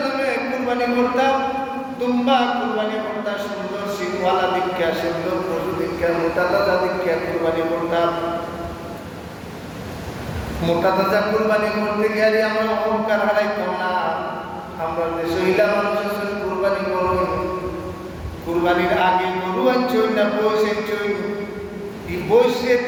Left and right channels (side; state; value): both; identical; correlation 1.00